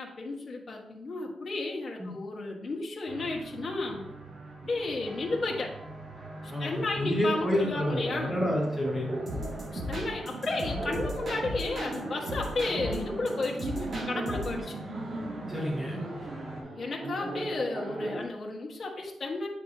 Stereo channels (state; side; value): normal; both; correlation 0.86